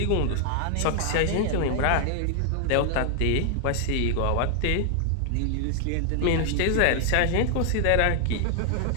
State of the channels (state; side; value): different; both; correlation 0.00